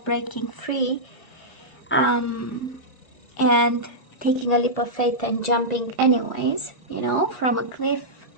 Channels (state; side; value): late; right; 1.6 ms